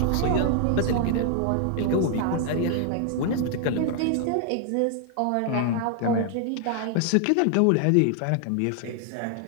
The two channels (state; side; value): different; both; correlation 0.00